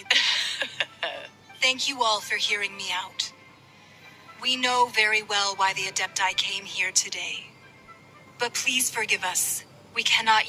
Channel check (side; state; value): both; identical; correlation 1.00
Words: Thank you all for hearing me out. We know very well why the Adepti came here today. But please forgive us. We cannot